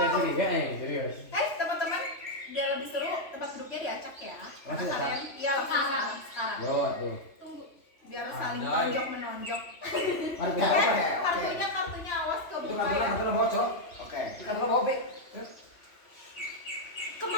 curiga, serius. Teman-teman, biar lebih seru, tempat duduknya diacak ya. Karena Langsung kalian, iya langsung sekarang. Yo, tuh. Tunggu, biar saling Andai. tonjok menonjok. Mari kita Oke. Kartunya awas Itu kebuka ya. kantor bocor. Oke. Kantor bawa Opik.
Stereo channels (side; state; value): right; late; 3.1 ms